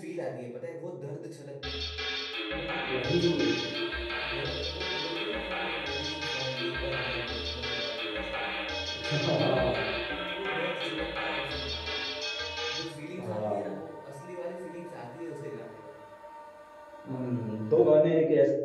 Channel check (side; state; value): both; identical; correlation 1.00